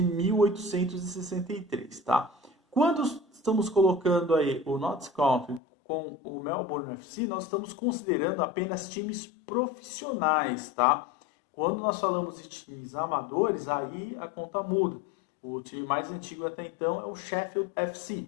1863, tá? Quando estamos colocando aí o Notts County com o Melbourne FC, nós estamos considerando apenas times profissionais, tá? Quando nós falamos de times amadores, aí a conta muda. O time mais antigo até então é o Sheffield FC.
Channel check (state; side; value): drops out; right; at 5.6 s